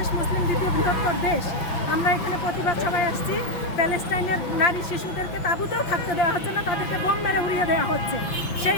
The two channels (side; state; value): right; late; 5.7 ms